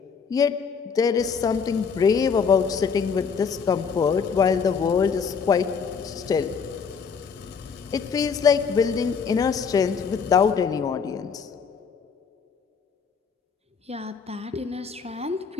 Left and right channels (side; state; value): right; quieter; 6.0 dB